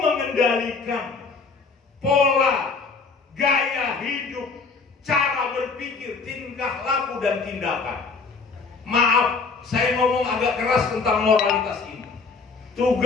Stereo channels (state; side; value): quieter; right; 4.6 dB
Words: pola gaya hidup, cara berpikir, tingkah laku dan tindakan. Maaf, saya ngomong agak keras tentang moralitas ini.